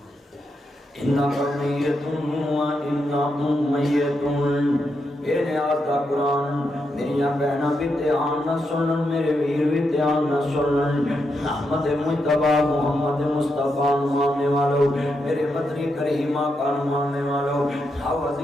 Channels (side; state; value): both; normal; correlation 0.83